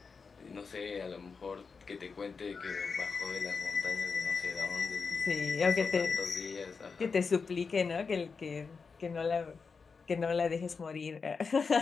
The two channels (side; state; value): right; quieter; 5.1 dB